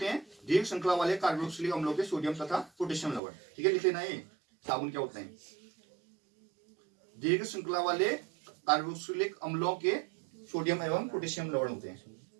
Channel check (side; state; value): left; drops out; at 3.2 s